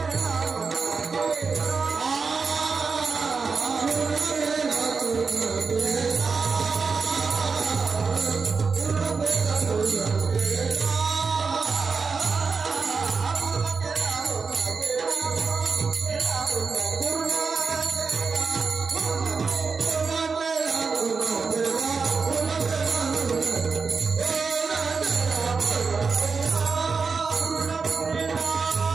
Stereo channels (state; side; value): quieter; left; 4.9 dB